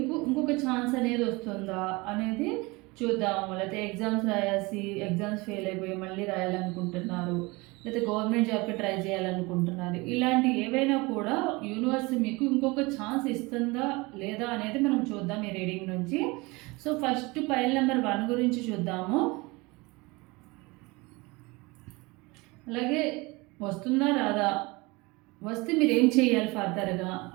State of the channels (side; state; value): left; quieter; 24.4 dB